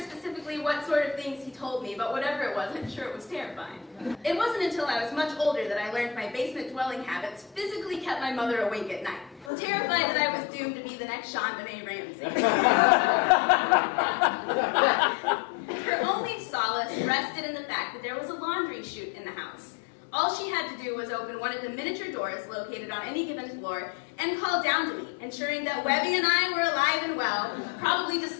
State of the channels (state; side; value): drops out; right; at 9.5 s